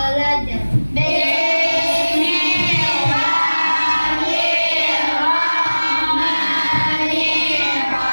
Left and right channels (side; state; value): both; inverted; correlation -1.00